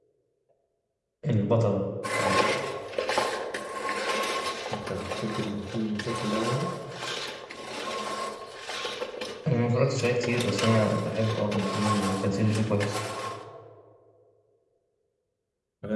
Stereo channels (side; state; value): both; identical; correlation 1.00